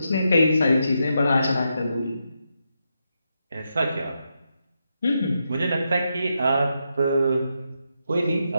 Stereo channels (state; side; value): inverted; both; correlation -0.84